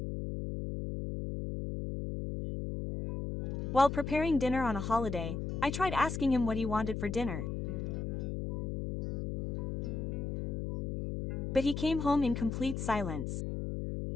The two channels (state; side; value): noise; left; hum, 3 dB below the sound